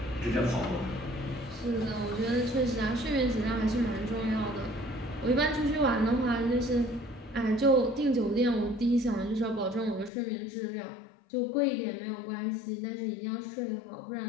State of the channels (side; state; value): right; drops out; at 10.1 s